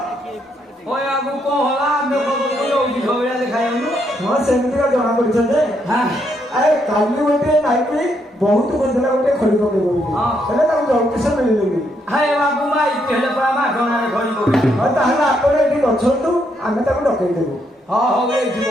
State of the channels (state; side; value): normal; both; correlation 0.76